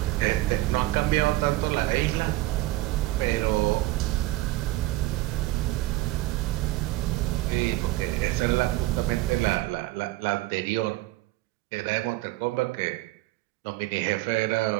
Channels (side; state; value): left; quieter; 17.8 dB